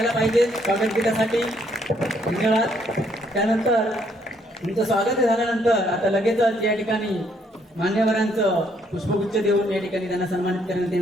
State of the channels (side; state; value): both; normal; correlation 0.69